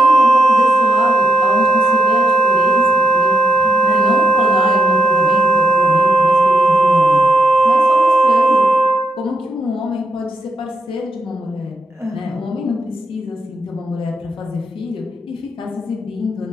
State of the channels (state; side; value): normal; both; correlation 0.80